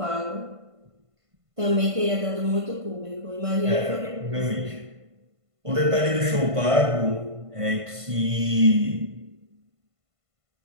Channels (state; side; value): late; left; 1.5 ms